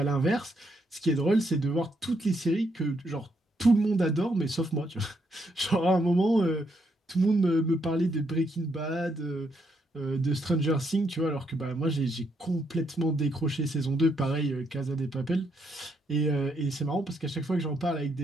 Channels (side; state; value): both; normal; correlation 0.76